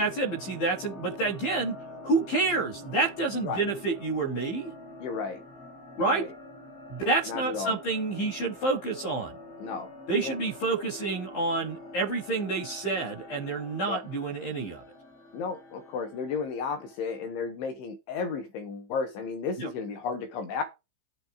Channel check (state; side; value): late; right; 15 ms